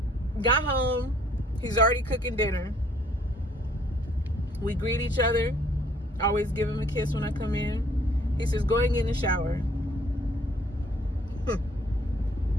Got home. He's already cooking dinner. We greet each other. I always give him a kiss when I come in. He says, go and get in the shower.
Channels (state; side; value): normal; both; correlation 0.62